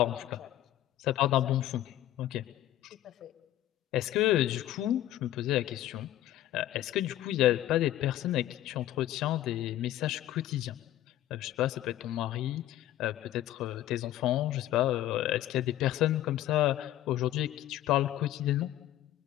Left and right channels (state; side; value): quieter; right; 13.7 dB